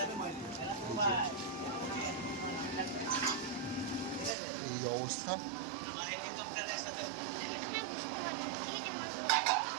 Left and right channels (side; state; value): left; drops out; at 4.4 s